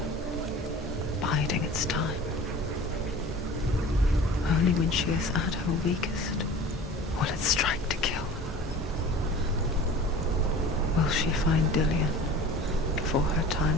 biding its time. Only when she is at her weakest will it strike to kill. Will she find Dillian before her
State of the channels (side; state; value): both; normal; correlation 0.41